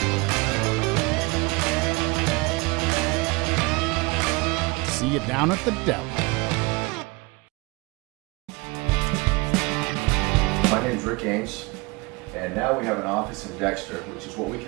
See you down at the deli. My name's Rick Ames, and now we have an office in Dexter, which is what we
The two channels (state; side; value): quieter; left; 25.6 dB